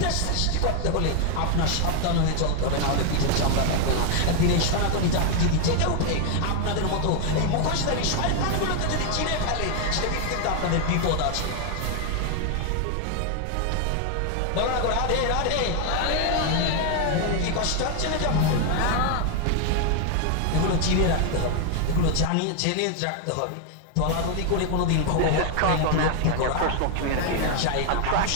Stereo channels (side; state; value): both; different; correlation 0.00